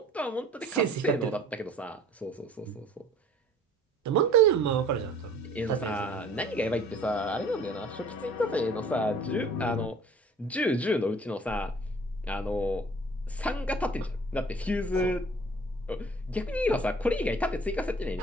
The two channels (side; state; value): both; normal; correlation 0.51